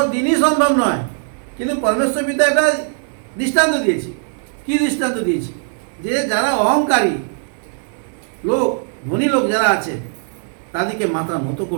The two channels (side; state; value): left; silent; 61 dB below the other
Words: দিনই সম্ভব নয়। কিন্তু পরমেশ্বর পিতা একটা দৃষ্টান্ত দিয়েছে। কি দৃষ্টান্ত দিয়েছে? যে যারা অহংকারী লোক, ধনী লোক যারা আছে, তাদেরকে মাথা নত